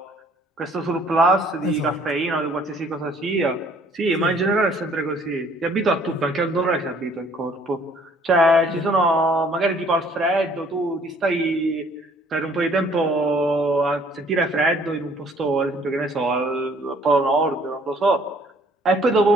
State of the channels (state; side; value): normal; both; correlation 0.59